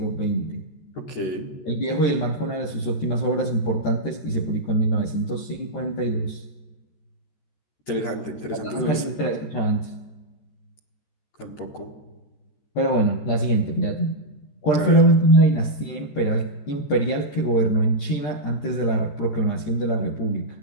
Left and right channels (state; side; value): late; right; 14 ms